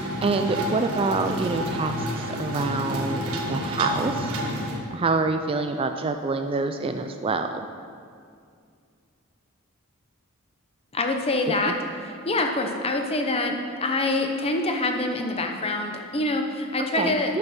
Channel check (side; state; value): both; normal; correlation 0.22